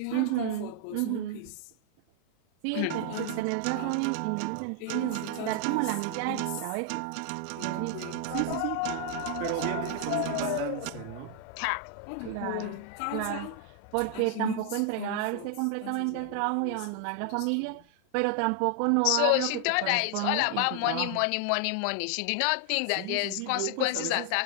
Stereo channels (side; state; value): both; different; correlation 0.00